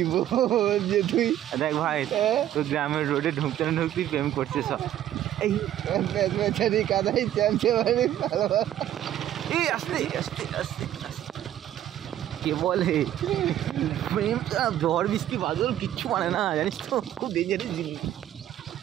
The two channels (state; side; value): quieter; left; 12.0 dB